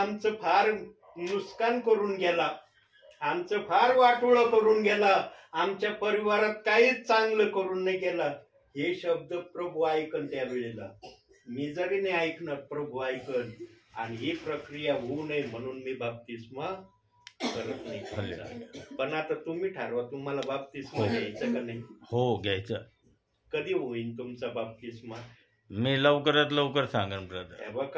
फार नुकसान करून गेला, आमचं फार वाटोळं करून गेला, आमच्या परिवारात काहीच चांगलं करून नाही गेला. हे शब्द प्रभू ऐकन त्यावेळेला. मी जरी नाही ऐकणार, प्रभू ऐकन. आणि ही प्रक्रिया होऊ नये म्हणून मी बाप्तिस्मा करत नाही तुमचा. पण आता तुम्ही ठरवा तुम्हाला बाप्तिस्मा घ्यायचं का नाही. हो घ्यायचं. कधी होईल तुमचा बाप्तिस्मा. मी लवकरात लवकर सांगेन ब्रदर. हे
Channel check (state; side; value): identical; both; correlation 1.00